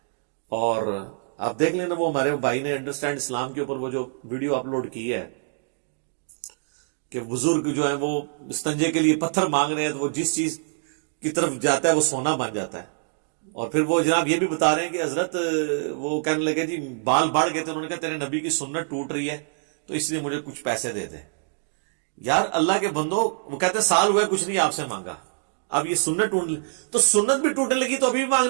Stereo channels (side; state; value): left; silent; digital silence